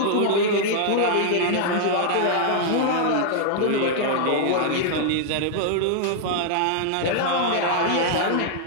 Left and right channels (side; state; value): both; different; correlation -0.01